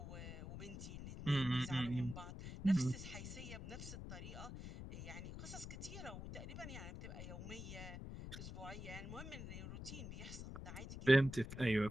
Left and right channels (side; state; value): left; noise; rumble, 9 dB below the sound